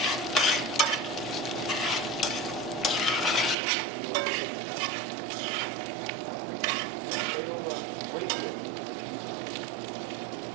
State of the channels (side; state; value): left; drops out; at 3.6 s